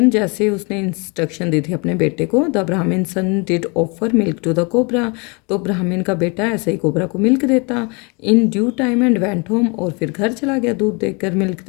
जैसे उसने इंस्ट्रक्शन दी थी अपने बेटे को, द ब्राह्मण son did offer milk to the cobra. तो ब्राह्मण का बेटा ऐसे ही कोबरा को मिल्क देता in due time and went home. और फिर घर चला गया दूध देकर, मिल्क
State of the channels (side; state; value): right; quieter; 30.9 dB